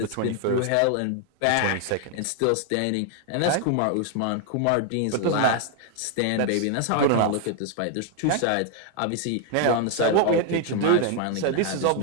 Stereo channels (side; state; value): both; different; correlation 0.00